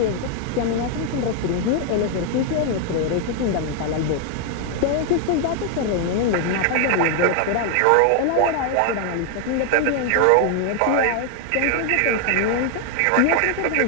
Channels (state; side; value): different; both; correlation 0.00